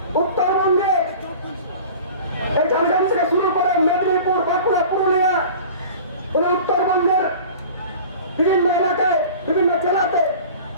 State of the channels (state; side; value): inverted; both; correlation -0.40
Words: উত্তরবঙ্গে এই ঝাড়গ্রাম থেকে শুরু করে মেদিনীপুর, বাঁকুড়া, পুরুলিয়া, উত্তরবঙ্গের বিভিন্ন এলাকায়, বিভিন্ন জেলাতে